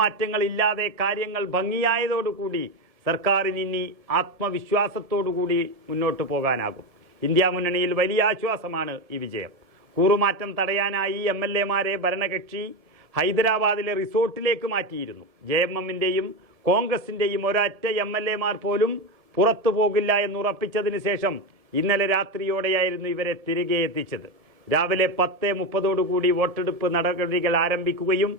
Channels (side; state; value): left; late; 1.7 ms